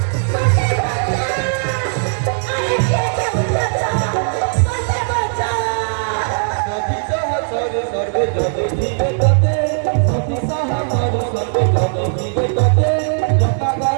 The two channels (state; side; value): silent; left; digital silence